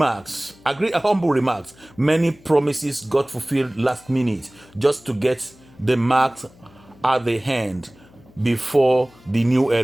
Many promises got fulfilled last minute just to get the marks at the hand before the new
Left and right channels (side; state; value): left; noise; hum, 27 dB below the sound